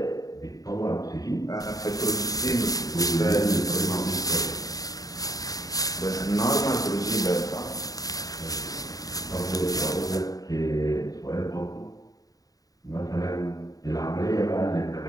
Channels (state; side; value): late; right; 0.18 ms